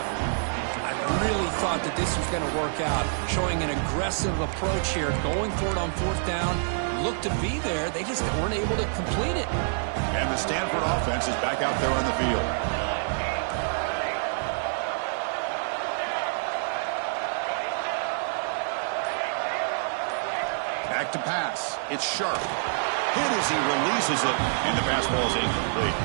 I really thought that this was going to work out. Showing an aggressive approach here. Going for it on fourth down. Looked to be there. They just weren't able to complete it. And the Stanford offense is back out there on the field. Back to pass. It's Sharp. Hit as he releases it, and the pass ball is incomplete.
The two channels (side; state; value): left; silent; 60 dB below the other